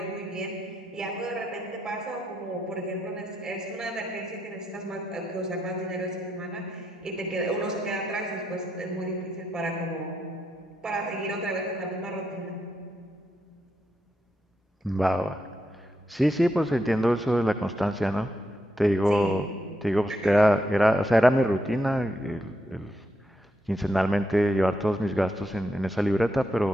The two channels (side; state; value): both; normal; correlation 0.82